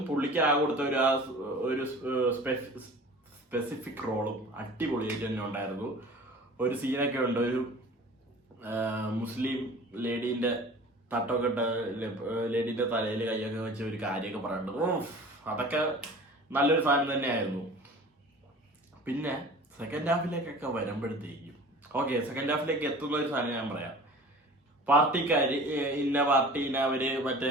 പുള്ളിക്ക് ആ കൊടുത്ത ഒരു സ്പെസിഫിക് റോളും അടിപൊളിയായിട്ട് തന്നെ ഉണ്ടായിരുന്നു. ഒരു സീനൊക്കെ ഉണ്ട്, ഒരു മുസ്ലിം ലേഡീന്റെ തട്ടൊക്കെ ഇട്ട് ലേഡീൻ്റെ തലയിൽ കൈയൊക്കെ വെച്ച് ഒരു കാര്യമൊക്കെ പറയുന്നുണ്ട്. അതൊക്കെ നല്ലൊരു സാധനം തന്നെയായിരുന്നു. പിന്നെ സെക്കൻഡ് ഹാഫിലേക്കൊക്കെ വരുമ്പോഴത്തേക്കും ഓക്കെ, സെക്കൻഡ് ഹാഫിലേക്ക് എത്തുന്ന ഒരു സാധനം ഞാൻ പറയാം. പാർട്ടിക്കാർ ഇന്ന പാർട്ടീനെ അവർ മറ്റേ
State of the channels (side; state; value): both; normal; correlation 0.42